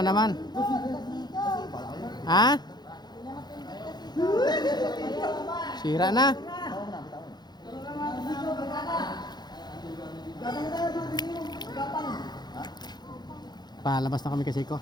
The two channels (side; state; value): right; late; 0.20 ms